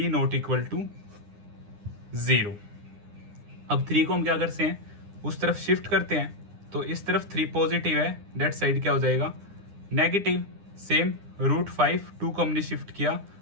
not equal to 0। अब 3 को हम क्या करते हैं उस तरफ शिफ्ट करते हैं, तो इस तरफ 3 पॉजिटिव है, डेट साइड क्या हो जाएगा नेगेटिव। सेम रूट 5 2 को हमने शिफ्ट किया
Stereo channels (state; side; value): late; left; 9.8 ms